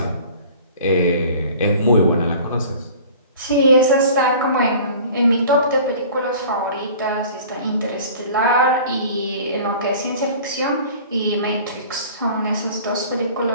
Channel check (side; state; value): both; inverted; correlation -0.45